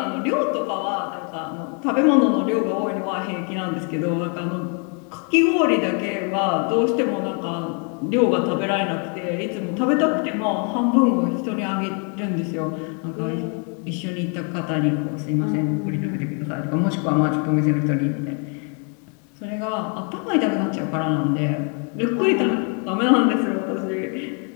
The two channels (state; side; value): quieter; right; 38.7 dB